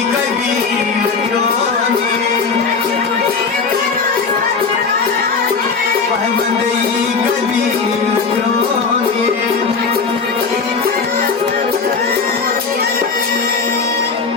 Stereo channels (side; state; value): right; quieter; 5.0 dB